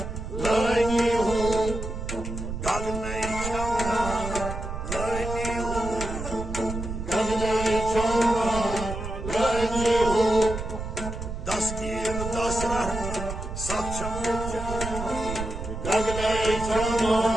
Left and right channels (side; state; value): right; noise; rumble, 6 dB below the sound